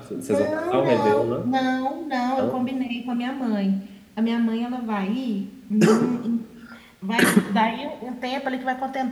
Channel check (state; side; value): identical; both; correlation 1.00